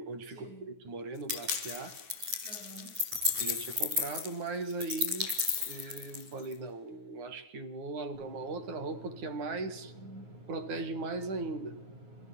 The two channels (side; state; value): left; late; 9.4 ms